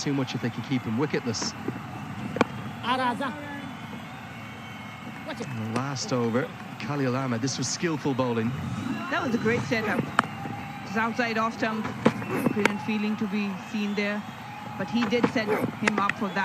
much if they can keep him wicketless. And the last over, Khalil Ahmed. This was skillful bowling. That was a great setup. Just outside off stump. Brilliant feeling to be seen there. But he did set him up for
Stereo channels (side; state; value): both; identical; correlation 1.00